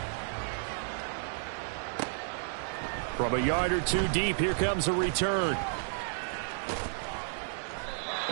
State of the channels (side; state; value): left; silent; digital silence